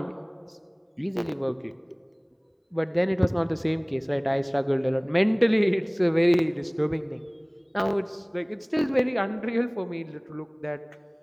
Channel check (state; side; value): identical; both; correlation 1.00